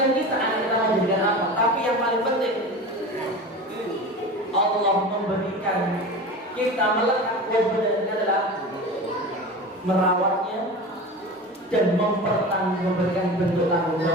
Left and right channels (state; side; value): normal; both; correlation 0.31